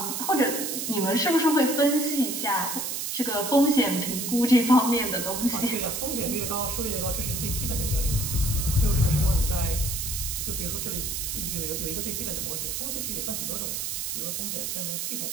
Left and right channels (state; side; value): noise; right; hiss, 3 dB below the sound